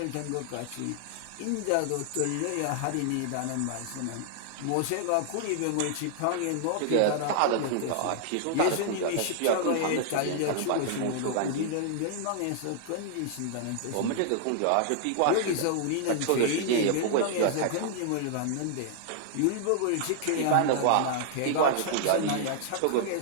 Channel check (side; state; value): both; different; correlation -0.01